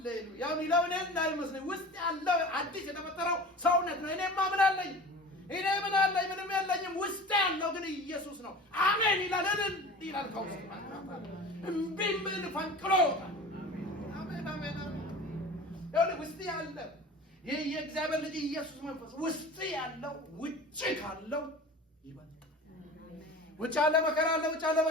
ያው ነው እንዳይመስል ውስጥ ያለው አዲስ የተፈጠረው ሰውነት ነው እኔማ ምን አለኝ እኔ ምን አለኝ ምንም የለኝም ውስጥ ያለው ግን ኢየሱስ ነው አሜን ይላል ከውስጥ ምን ፈንቅሎ አሜን ያው ውስጥ ያለው የእግዚአብሔር ልጅ ኢየሱስ መንፈስ ውስጥ ያለው ውጭ ካለው ይበልጣል ውጭ ያለ መከራ አለ ውጭ ያለ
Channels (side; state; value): both; normal; correlation 0.37